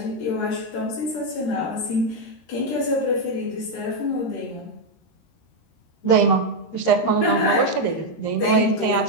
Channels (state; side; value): late; right; 13 ms